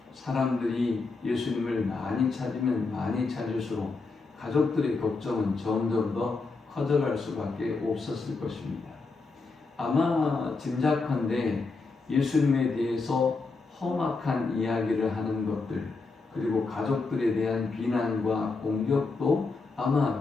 사람들이 예수님을 많이 찾으면 많이 찾을수록 가족들의 걱정은 점점 더 커져갈 수밖에 없었을 것입니다. 아마 짐작컨대 예수님에 대해서 험악한 이야기를 하는 것들 그리고 가족들에 대한 비난과 공격도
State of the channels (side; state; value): right; quieter; 4.0 dB